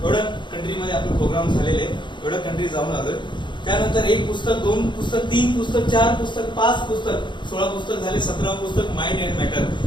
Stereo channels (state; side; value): late; right; 0.23 ms